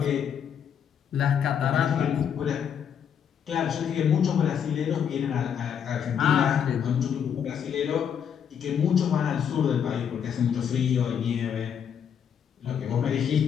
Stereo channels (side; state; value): right; quieter; 8.1 dB